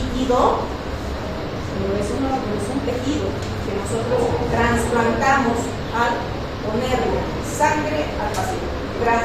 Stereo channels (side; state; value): both; identical; correlation 1.00